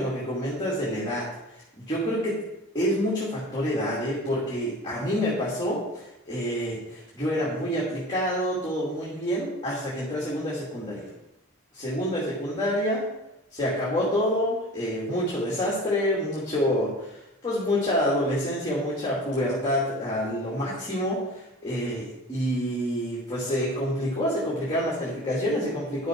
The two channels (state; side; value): normal; both; correlation 0.39